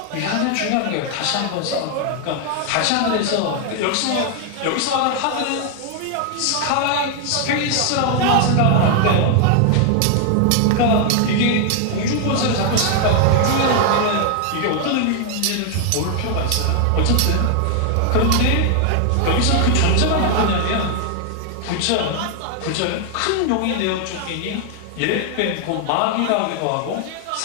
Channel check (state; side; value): different; both; correlation 0.00